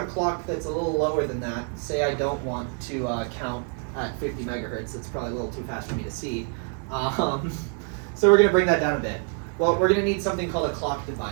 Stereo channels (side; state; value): left; quieter; 39.8 dB